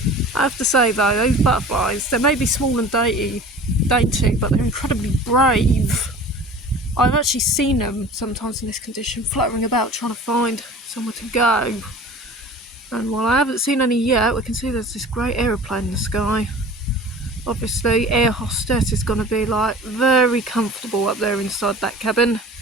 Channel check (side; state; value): both; normal; correlation 0.41